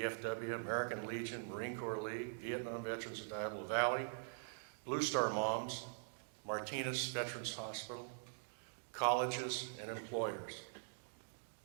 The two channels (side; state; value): left; silent; digital silence